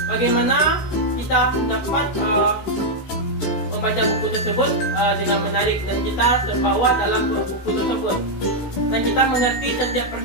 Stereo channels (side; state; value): right; late; 16 ms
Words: Bagaimana kita dapat membaca buku tersebut dengan menarik dan kita terbawa dalam buku tersebut, dan kita mengerti setiap